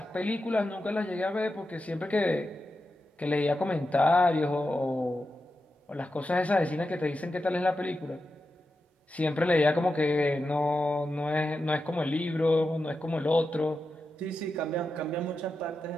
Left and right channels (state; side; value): normal; both; correlation 0.90